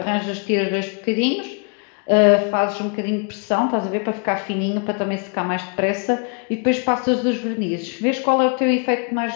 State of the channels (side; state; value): right; quieter; 38.5 dB